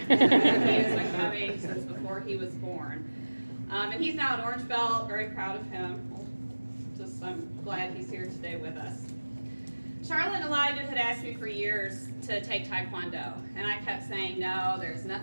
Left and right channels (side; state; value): both; inverted; correlation -1.00